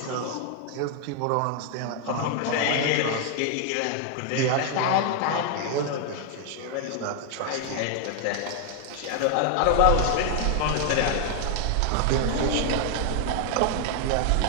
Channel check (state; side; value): different; both; correlation 0.00